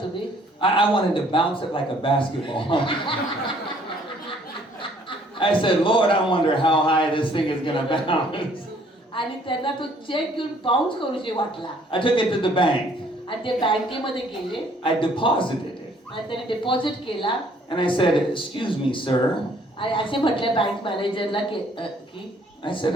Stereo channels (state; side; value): normal; both; correlation 0.61